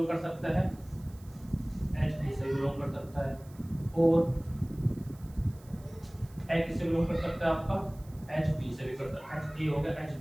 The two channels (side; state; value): right; noise; hiss, 26 dB below the sound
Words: कर सकता है, h b से बिलोंग कर सकता है, और h किससे बिलोंग कर सकता है आपका, h b से भी कर सकता है, h a हो गया, h